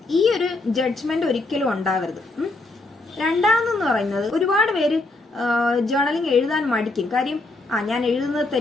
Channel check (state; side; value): quieter; right; 3.0 dB